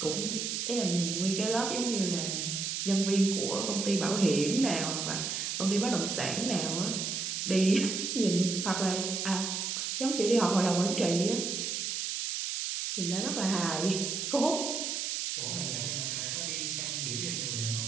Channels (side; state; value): right; noise; hiss, 2 dB below the sound